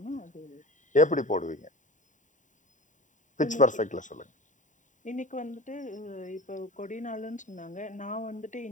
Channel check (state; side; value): late; right; 0.36 ms